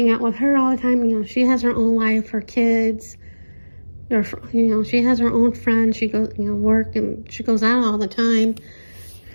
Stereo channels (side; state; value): both; inverted; correlation -1.00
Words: out with her all the time. She has her own life, her kids, or she has her own friends. She goes, work, and she goes out all the time.